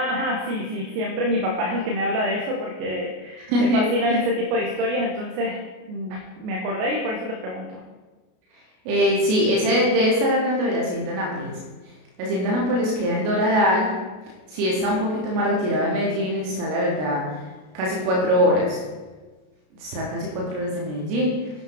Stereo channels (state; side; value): late; left; 33 ms